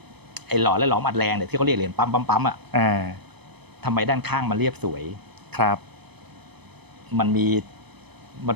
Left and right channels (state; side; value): late; left; 0.98 ms